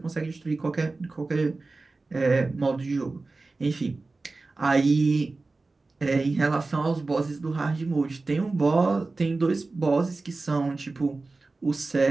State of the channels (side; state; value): left; quieter; 3.5 dB